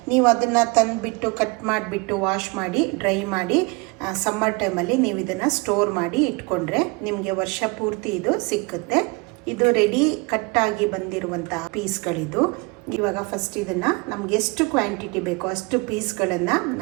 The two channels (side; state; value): left; quieter; 27.5 dB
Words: ನೀವು ಅದನ್ನು ತಂದುಬಿಟ್ಟು ಕಟ್ ಮಾಡಿಬಿಟ್ಟು ವಾಶ್ ಮಾಡಿ ಡ್ರೈ ಮಾಡಿ ಸಮ್ಮರ್ ಟೈಮಲ್ಲಿ ನೀವು ಇದನ್ನು ಸ್ಟೋರ್ ಮಾಡಿ ಇಟ್ಕೊಂಡ್ರೆ ನಿಮಗೆ ವರ್ಷ ಪೂರ್ತಿ ಇದು ಸಿಕ್ಕುತ್ತೆ. ಇದು ರೆಡಿ ಕಟ್ಟಾಗಿ ಬಂದಿರುವಂತಹ ಪೀಸ್ಗಳಿದು. ಇವಾಗ ಫಸ್ಟ್ ಇದನ್ನು ನಮ್ಗೆ ಎಷ್ಟು ಕ್ವಾಂಟಿಟಿ ಬೇಕೋ ಅಷ್ಟು ಪೀಸ್ಗಳನ್ನು